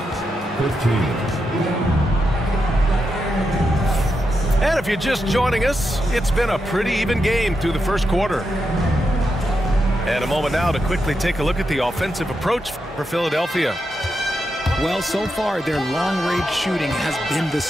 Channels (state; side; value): normal; both; correlation 0.85